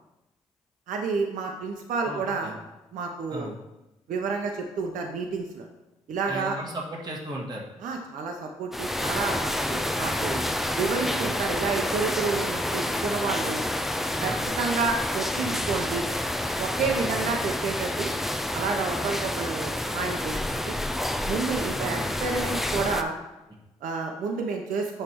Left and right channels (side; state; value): both; normal; correlation 0.65